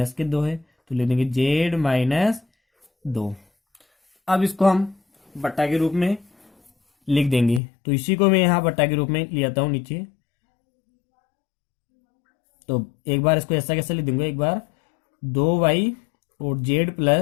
के 2 है तो लिख देंगे Z माइनस 2। अब इसको हम बट्टा के रूप में लिख देंगे। तो इसी को मैं यहाँ बट्टा के रूप में ले आता हूँ नीचे। तो एक बार इसको ऐसा कैसे लिख दूंगा, एक बार 2Y और Z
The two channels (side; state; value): right; drops out; at 7.6 s